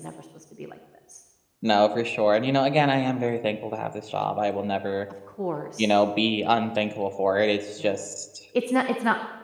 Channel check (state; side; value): identical; both; correlation 1.00